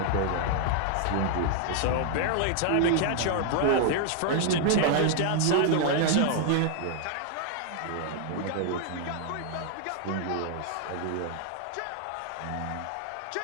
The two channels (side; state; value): both; different; correlation 0.00